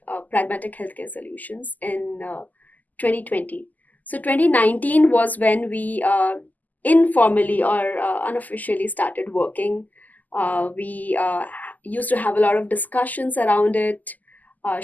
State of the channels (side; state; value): right; late; 0.081 ms